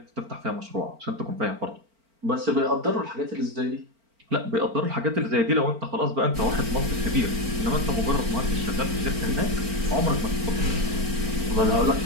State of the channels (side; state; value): left; late; 4.4 ms